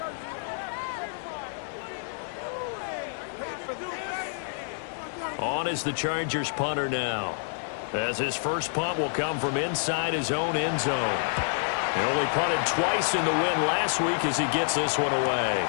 On is the Chargers punter now, as his first punt will come from inside his own end zone. He only punted twice in the win last week as he gets this one away.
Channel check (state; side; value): silent; right; digital silence